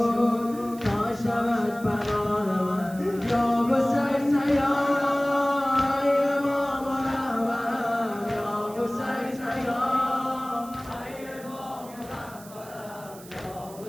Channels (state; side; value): noise; right; hiss, 19 dB below the sound